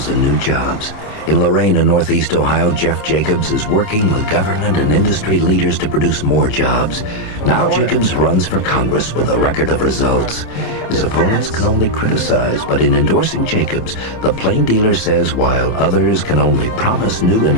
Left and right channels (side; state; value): right; late; 27 ms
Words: new jobs. In Lorain and Northeast Ohio, Jeff Jacobs is working with government and industry leaders to produce more jobs. Now Jacobs runs for Congress with a record of results. His opponents can only criticize, but in endorsing Jacobs, the plain dealer says while others can only promise new